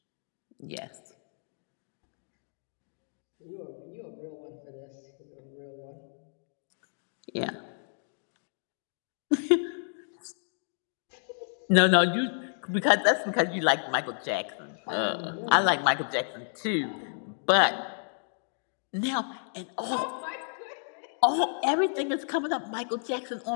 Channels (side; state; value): right; silent; digital silence